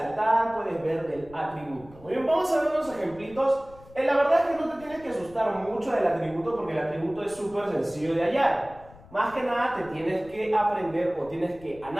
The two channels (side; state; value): left; noise; rumble, 22 dB below the sound